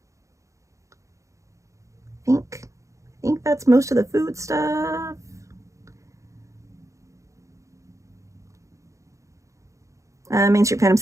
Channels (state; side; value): late; left; 0.15 ms